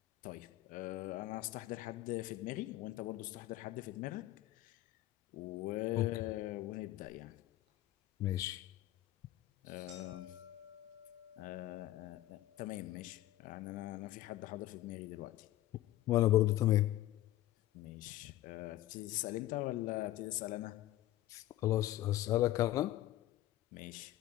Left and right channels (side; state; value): right; quieter; 15.1 dB